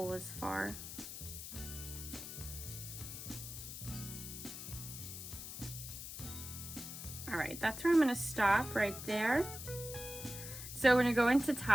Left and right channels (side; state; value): left; noise; hiss, 9 dB below the sound